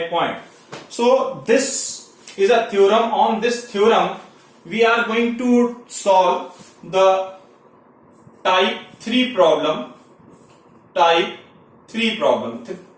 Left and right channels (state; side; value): identical; both; correlation 1.00